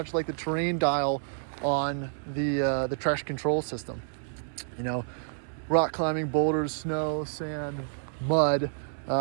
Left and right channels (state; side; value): silent; left; digital silence